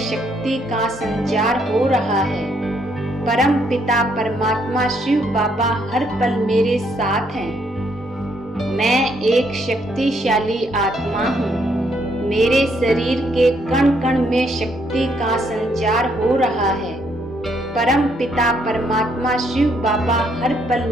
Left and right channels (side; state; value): both; normal; correlation 0.71